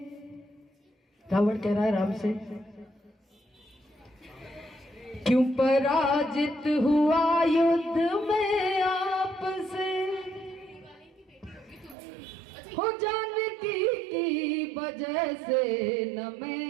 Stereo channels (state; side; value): drops out; left; at 12.0 s